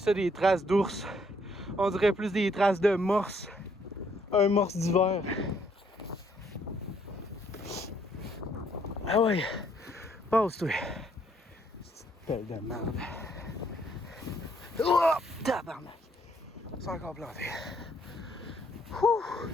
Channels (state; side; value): normal; both; correlation 0.68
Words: ça des traces d'ours. On dirait plus des traces de morse. Un morse d'hiver. Ah ouais. Passe-toi. C'est une pelle de merde. Oh! Tabarnak. C'est encore planté. Ouh.